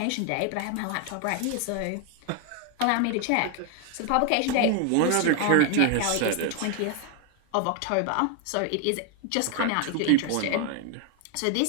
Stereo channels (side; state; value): both; different; correlation 0.00